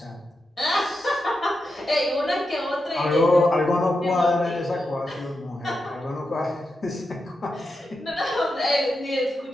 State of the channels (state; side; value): normal; both; correlation 0.88